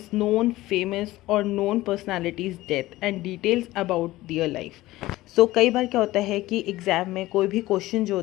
known, famous or known personality's death and details about their life. So कई बार क्या होता है कि एग्ज़ाम में कोई भी question जो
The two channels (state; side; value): quieter; right; 17.4 dB